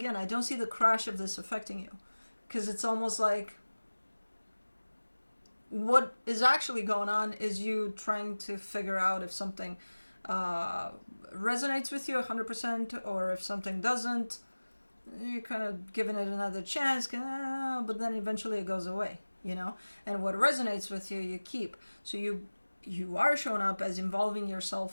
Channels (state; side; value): inverted; both; correlation -1.00